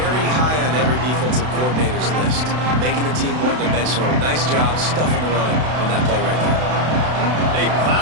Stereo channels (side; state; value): left; late; 32 ms